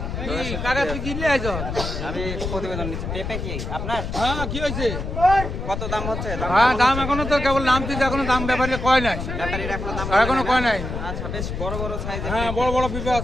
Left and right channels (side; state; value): left; noise; rumble, 5 dB below the sound